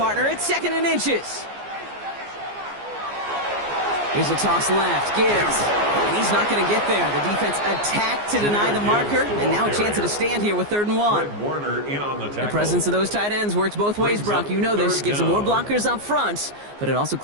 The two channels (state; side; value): late; left; 14 ms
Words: It's 2nd and inches. Here's a toss left. Gibbs. And he's not going to get there. The defense attacked to deny the marker, and now a chance at a stand here with 3rd and 1. The presence of those tight ends works both ways, Brock. You know this. Gives them more blockers up front, but it also